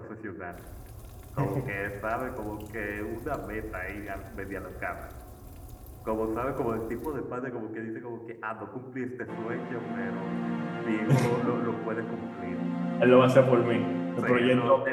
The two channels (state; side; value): identical; both; correlation 1.00